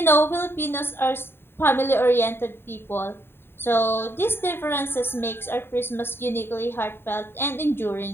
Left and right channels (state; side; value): late; right; 0.11 ms